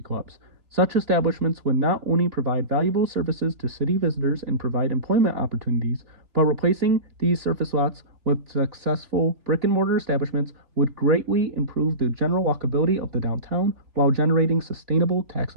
clubs. Such establishments would not only provide valuable services to city visitors and provide employment opportunities, but replacing these surface lots with successful brick and mortar establishments would greatly improve the general walkability of the downtown while generating sustainable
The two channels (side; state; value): left; late; 3.3 ms